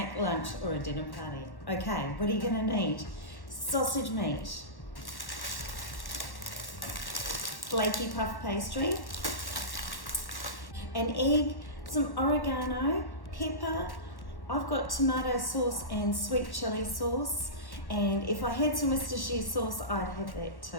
lunch or a dinner party. Okay, what are you gonna need? Sausage meat, flaky puff pastry, an egg, some oregano, pepper. I've got tomato sauce and sweet chili sauce. And if I had some Worcestershire sauce, I'd have that too.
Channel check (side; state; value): right; late; 1.1 ms